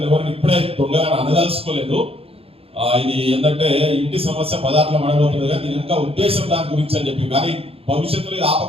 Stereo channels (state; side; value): late; left; 0.28 ms